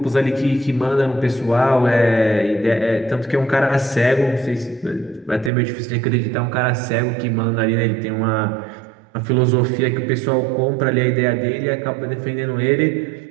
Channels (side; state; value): left; drops out; at 5.5 s